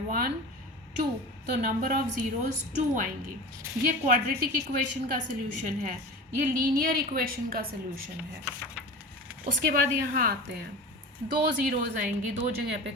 1 2, तो नंबर ऑफ़ ज़ीरोज़ 2 आएंगी। ये क्वाड्रेटिक इक्वेशन का सल्यूशन है, ये लीनियर इक्वेशन का सल्यूशन है। उसके बाद यहाँ आते हैं, दो ज़ीरोज़ आएंगी, दो जगह पे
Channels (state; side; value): normal; both; correlation 0.32